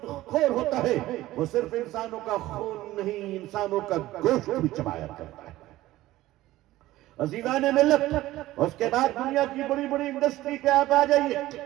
خور ہوتا ہے وہ صرف انسانوں کا خون نہیں، انسانوں کا گوشت بھی چبایا کرتا ہے۔ عزیزان ملت، اس کے بعد دنیا کی بڑی بڑی انڈسٹری پہ آپ آ جائیے۔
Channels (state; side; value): quieter; left; 16.3 dB